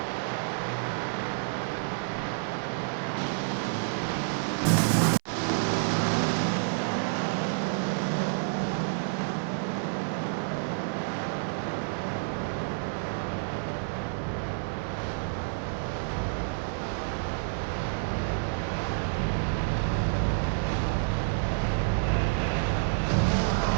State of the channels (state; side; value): silent; left; 58 dB below the other